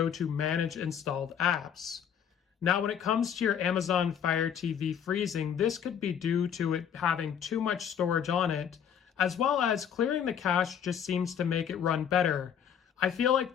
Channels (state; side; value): quieter; right; 8.5 dB